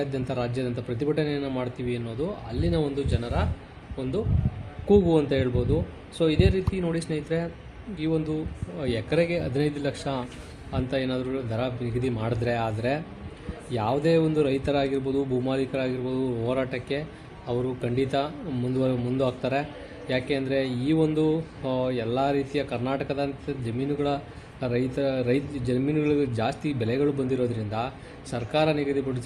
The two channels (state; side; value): identical; both; correlation 1.00